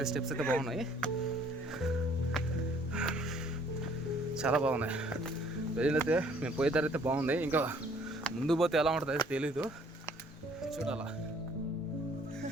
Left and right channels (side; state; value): both; normal; correlation 0.59